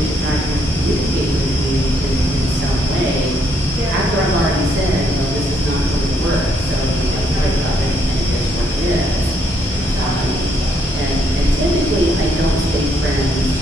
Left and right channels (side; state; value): both; normal; correlation 0.72